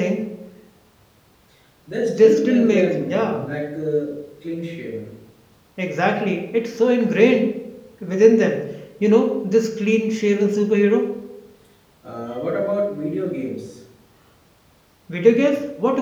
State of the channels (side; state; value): both; identical; correlation 1.00